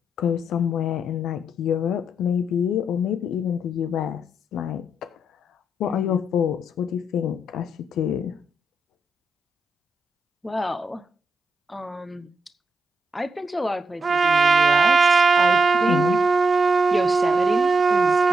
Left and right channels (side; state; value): both; normal; correlation 0.82